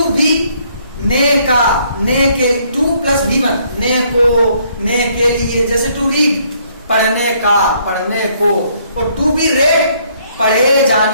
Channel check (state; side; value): inverted; both; correlation -0.67